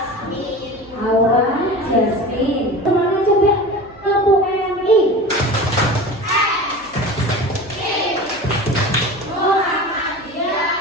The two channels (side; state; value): right; noise; hum, 24 dB below the sound